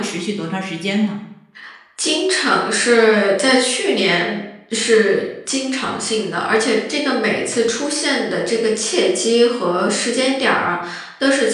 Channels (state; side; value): identical; both; correlation 1.00